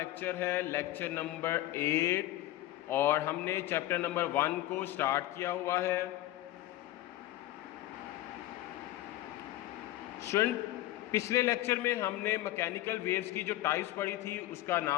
है लेक्चर नंबर 8 और हमने चैप्टर नंबर 1 को स्टार्ट किया हुआ है। स्टूडेंट, पिछले लेक्चर में हमने मैकेनिकल वेव्स की जो टाइप्स पढ़ी थी उसका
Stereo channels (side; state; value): right; quieter; 15.3 dB